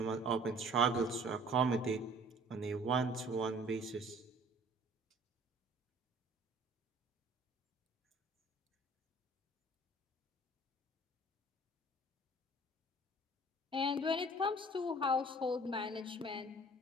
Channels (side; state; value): both; normal; correlation 0.51